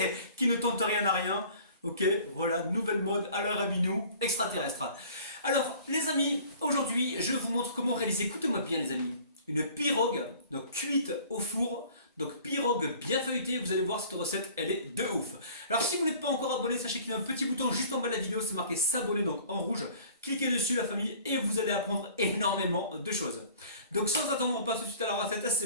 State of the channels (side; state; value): both; inverted; correlation -0.49